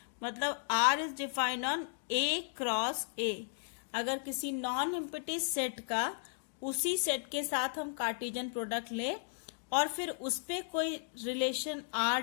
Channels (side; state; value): right; silent; digital silence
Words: मतलब R is defined on A cross A। अगर किसी नॉन एम्प्टी सेट का उसी सेट के साथ हम कार्टेशियन प्रोडक्ट ले और फिर उस पे कोई रिलेशन R